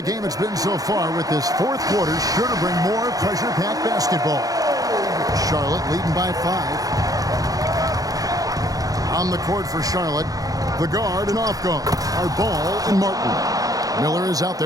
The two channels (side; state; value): left; late; 0.17 ms